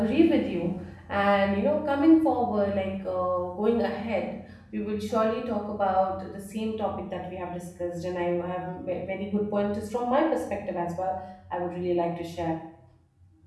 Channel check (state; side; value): identical; both; correlation 1.00